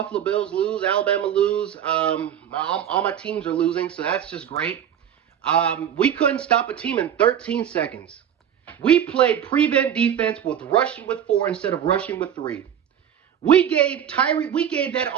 Bills lose, Alabama lose. All my teams are losing, so that's just great. We couldn't stop a team in 13 seconds. We played prevent defense with rushing with 4 instead of rushing with 3. We gave that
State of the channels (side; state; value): left; quieter; 9.4 dB